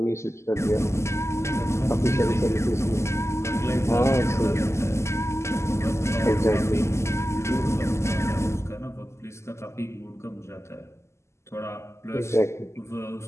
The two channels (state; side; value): late; right; 0.13 ms